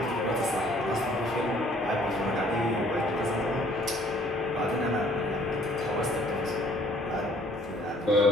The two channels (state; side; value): normal; both; correlation 0.59